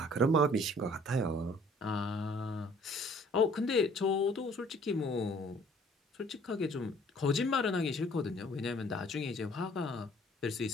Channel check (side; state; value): both; normal; correlation 0.56